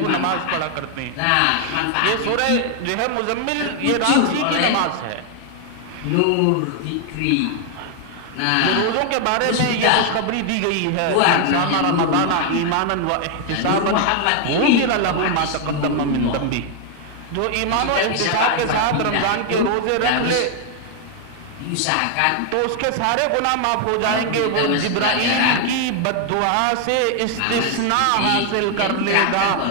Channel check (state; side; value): different; both; correlation 0.00